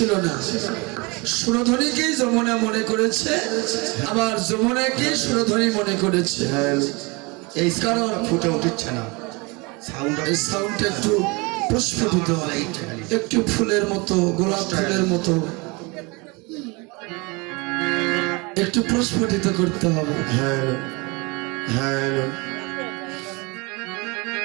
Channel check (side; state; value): left; quieter; 27.3 dB